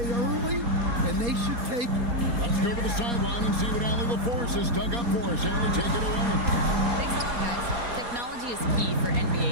early, and they should take it. Let's go to the sideline and see what Allie LaForce has dug up for us. Allie, take it away. Thanks a lot, guys. Technology is key for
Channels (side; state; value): left; late; 4.2 ms